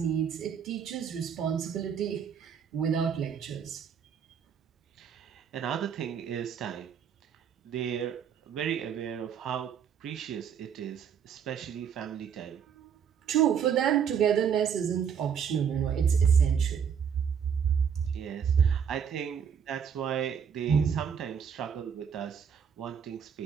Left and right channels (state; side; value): quieter; left; 7.6 dB